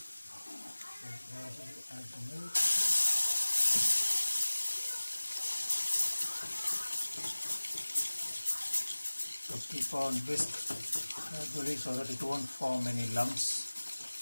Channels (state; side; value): inverted; both; correlation -1.00